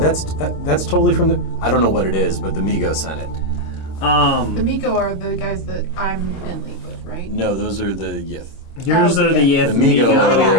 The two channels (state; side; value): late; right; 26 ms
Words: totally from the. I don't know what it is, but the Migo sent it. The Miko are the guys that I'm in league with, right? No, those are the Yith. Yours are the Yith. The Migo My are